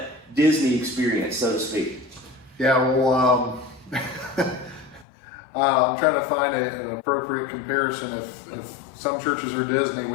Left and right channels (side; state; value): right; drops out; at 5.1 s